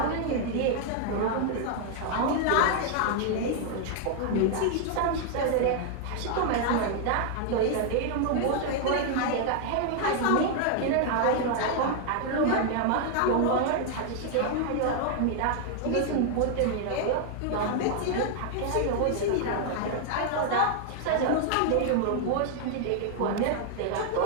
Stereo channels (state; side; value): different; both; correlation 0.00